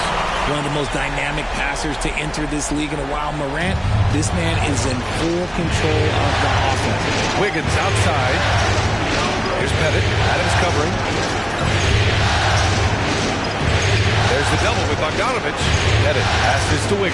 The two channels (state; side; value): identical; both; correlation 1.00